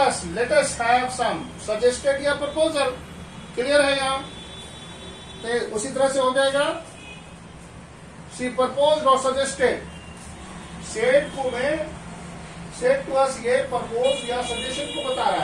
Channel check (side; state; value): both; identical; correlation 1.00